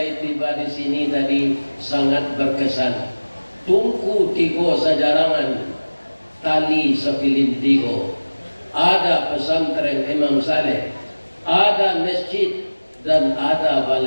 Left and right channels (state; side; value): inverted; both; correlation -1.00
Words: tiba di sini tadi sangat berkesan. Tungku tigo sajarangan, tali sepilin tigo. Ada pesantren Imam Saleh, ada masjid, dan ada